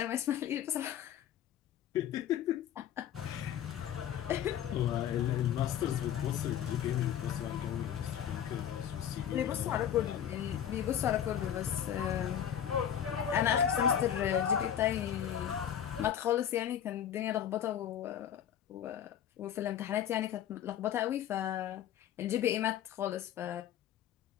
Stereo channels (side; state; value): right; quieter; 9.8 dB